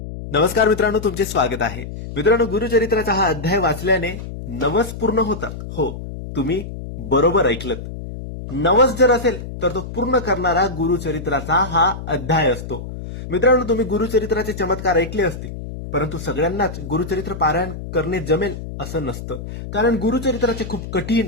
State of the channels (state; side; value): noise; left; hum, 9 dB below the sound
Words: नमस्कार मित्रांनो, तुमचे स्वागत आहे. मित्रांनो, गुरुचरित्राचा हा अध्याय वाचल्याने नवस पूर्ण होतात. हो, तुम्ही बरोबर ऐकलत. नवस जर असेल तर तो पूर्ण करणारा गुरुचरित्राचा हा अध्याय असतो. मित्रांनो, तुम्ही गुरुचरित्राचे चमत्कार ऐकले असतील, परंतु सगळ्यांनाच गुरुचरित्र पारायण करणे जमेल असं नसतं. कारण गुरुचरित्राचे खूप